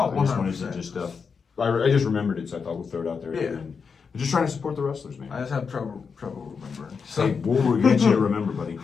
I just wanted to I just remembered it, so I thought we'll throw it out there. Yeah. We're just trying to support the wrestlers, man. I just have trouble remembering. Hey, we'll get you to remember, buddy.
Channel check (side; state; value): right; quieter; 5.7 dB